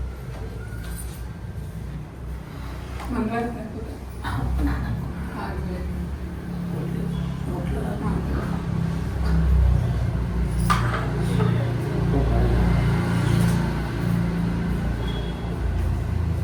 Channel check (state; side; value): identical; both; correlation 1.00